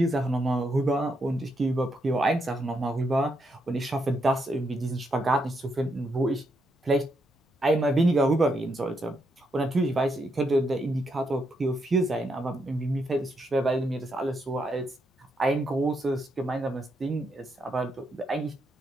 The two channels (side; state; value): both; normal; correlation 0.79